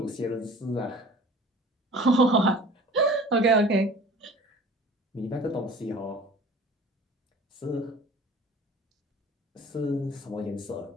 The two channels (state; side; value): normal; both; correlation 0.45